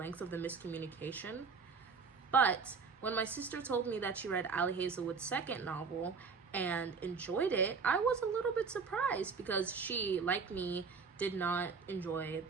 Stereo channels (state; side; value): quieter; left; 5.2 dB